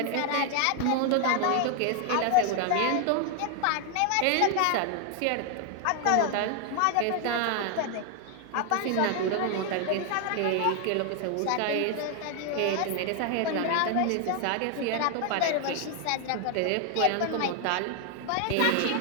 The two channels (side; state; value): both; different; correlation 0.00